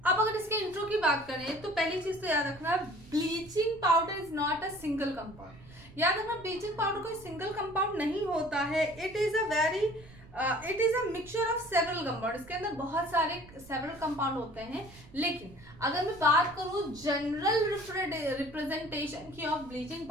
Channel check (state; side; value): noise; right; rumble, 21 dB below the sound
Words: अब अगर इसके इंट्रो की बात करें तो पहली चीज तो याद रखना, bleaching powder is not a single compound. याद रखना ब्लीचिंग पाउडर कोई सिंगल कंपाउंड नहीं होता है, it is a mixture of several compound. इसके अंदर बहुत सारे सेवरल कंपाउंड होते हैं, लेकिन अगर मैं बात करूं जनरल रिप्रेजेंटेशन की ऑफ ब्लीचिंग